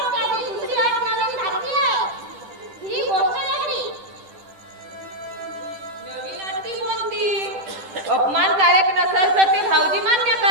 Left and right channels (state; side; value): late; left; 10 ms